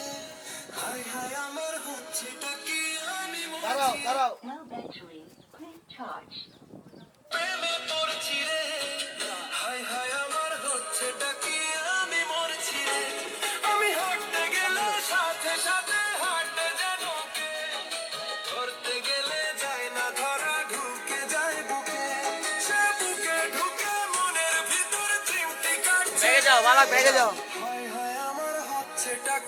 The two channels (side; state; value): both; identical; correlation 1.00